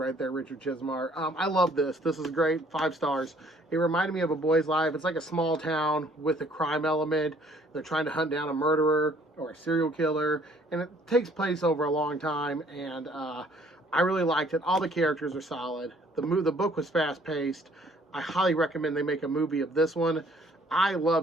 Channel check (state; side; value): normal; both; correlation 0.60